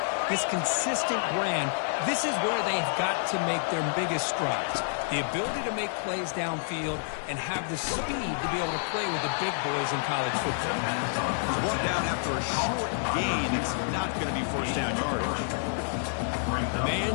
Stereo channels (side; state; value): right; silent; digital silence